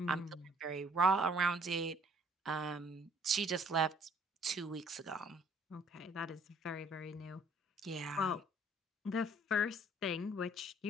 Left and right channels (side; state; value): both; normal; correlation 0.60